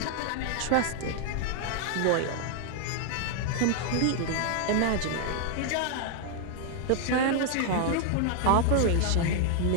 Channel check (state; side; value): different; both; correlation 0.00